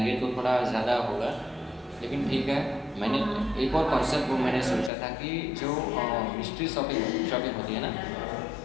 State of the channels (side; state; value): right; drops out; at 4.9 s